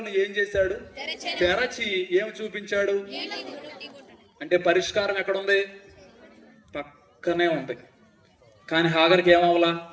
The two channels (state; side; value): identical; both; correlation 1.00